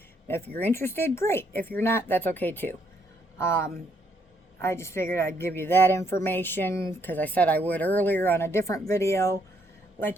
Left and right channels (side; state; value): both; normal; correlation 0.72